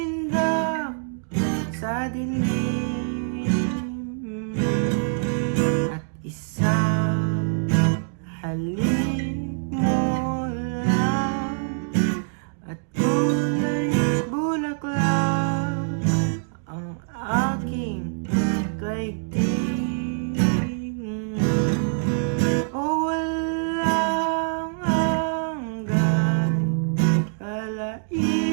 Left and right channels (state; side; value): silent; left; digital silence